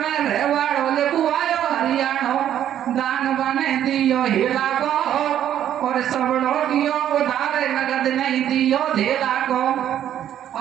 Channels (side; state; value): left; quieter; 10.7 dB